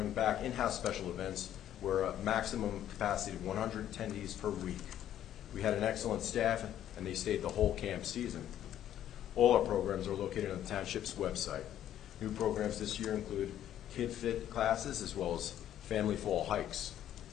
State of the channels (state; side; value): quieter; right; 11.3 dB